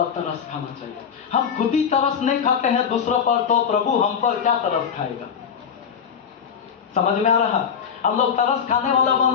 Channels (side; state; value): right; quieter; 7.3 dB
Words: तरस खाना चाहिए। हम खुद ही तरस नहीं खाते हैं दूसरों पर, तो प्रभु हम पर क्या तरस खाएगा? समझ में आ रहा? हम लोग तरस खाने वाला